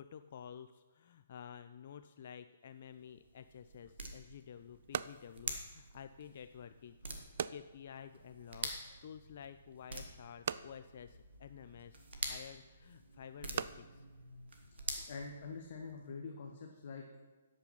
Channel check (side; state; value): both; inverted; correlation -0.64